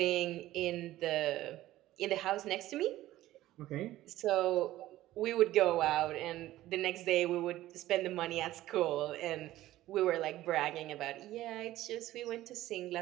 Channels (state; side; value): quieter; left; 15.2 dB